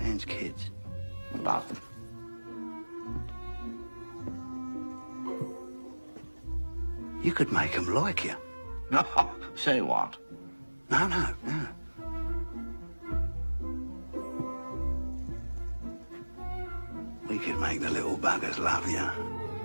Man's kids. Love them. You could make them like you. No, say what? No. We could make the little buggers love you.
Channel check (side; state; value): both; inverted; correlation -1.00